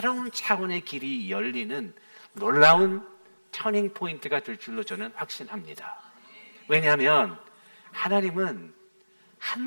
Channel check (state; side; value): inverted; both; correlation -1.00